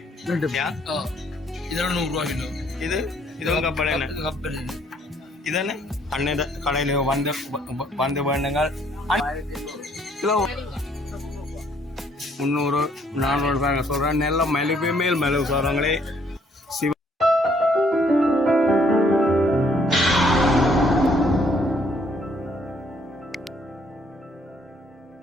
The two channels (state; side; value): normal; both; correlation 0.65